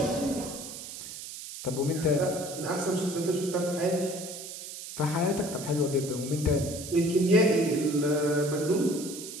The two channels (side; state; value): right; noise; hiss, 10 dB below the sound